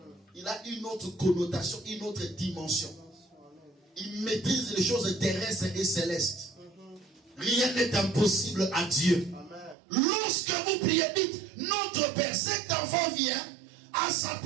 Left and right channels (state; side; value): drops out; left; at 9.8 s